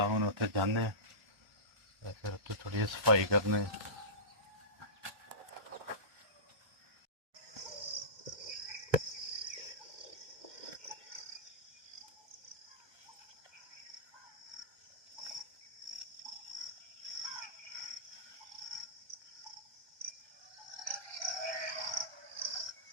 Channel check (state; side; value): late; left; 1.3 ms